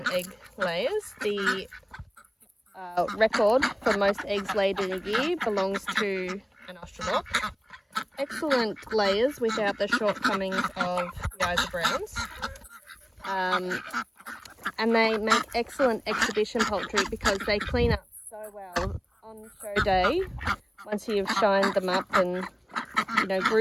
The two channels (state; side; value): identical; both; correlation 1.00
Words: egg layers. The record for most eggs laid in a year belongs to an Australorp. Excellent layers without the shortcomings of the Isa Browns. And they make excellent exhibition poultry because they clean up so well on show day. Once you've shined them up and